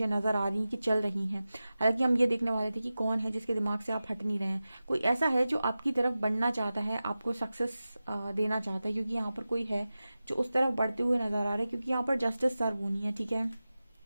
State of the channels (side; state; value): both; inverted; correlation -0.94